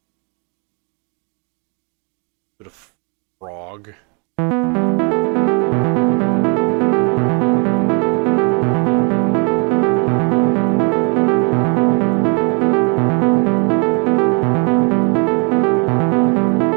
Bit of frog.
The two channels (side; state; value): left; quieter; 34.4 dB